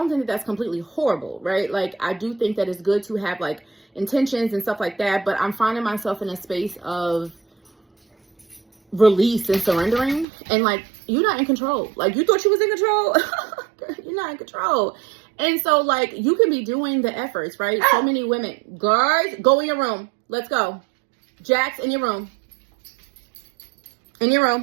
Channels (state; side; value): drops out; left; at 10.2 s